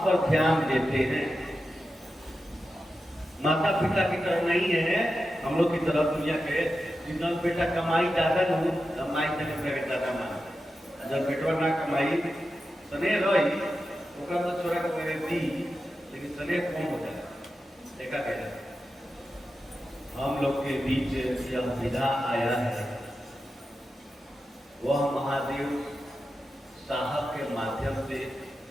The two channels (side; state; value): both; normal; correlation 0.91